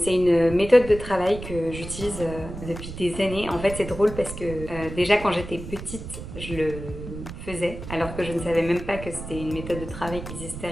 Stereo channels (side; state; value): right; noise; rumble, 10 dB below the sound